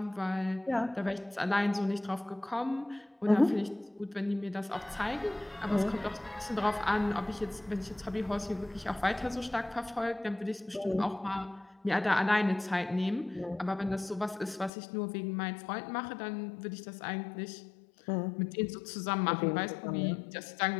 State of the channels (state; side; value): drops out; right; at 14.7 s